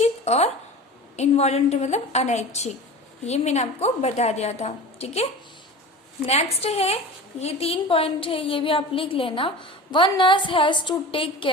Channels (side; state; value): both; normal; correlation 0.34